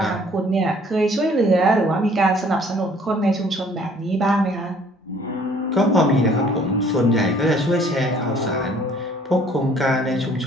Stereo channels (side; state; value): both; normal; correlation 0.57